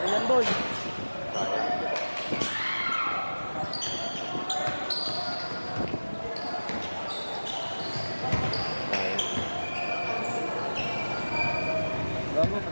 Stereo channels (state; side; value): inverted; both; correlation -1.00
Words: Ayan, boy. Gago,